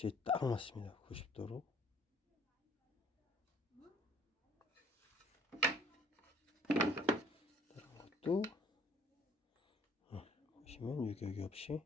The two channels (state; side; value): normal; both; correlation 0.58